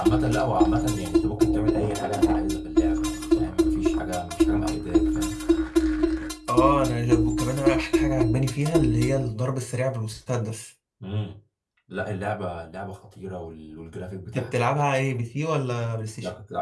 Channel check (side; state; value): both; identical; correlation 1.00